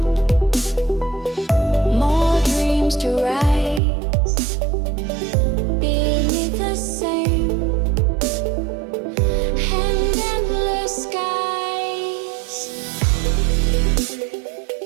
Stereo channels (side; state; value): left; drops out; at 3.8 s